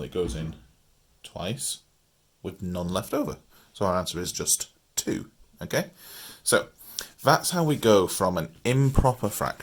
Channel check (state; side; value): identical; both; correlation 1.00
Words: it goes in twice with none left over. So our answer is just 2, okay? So that's how we go from an improper